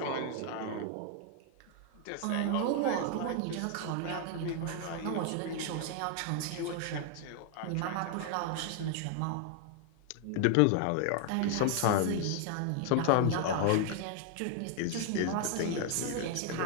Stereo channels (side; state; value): both; different; correlation 0.00